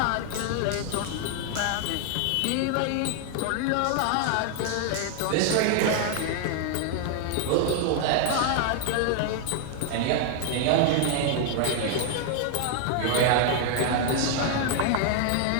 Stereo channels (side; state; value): both; different; correlation 0.00